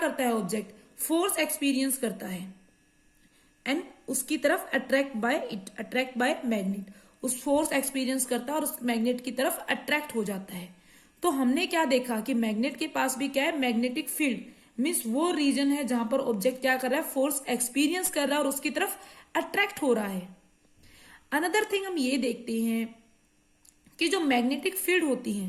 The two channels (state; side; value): identical; both; correlation 1.00